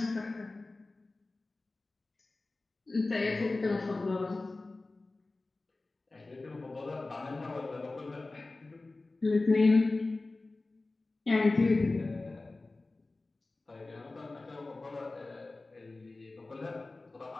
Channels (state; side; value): quieter; right; 3.2 dB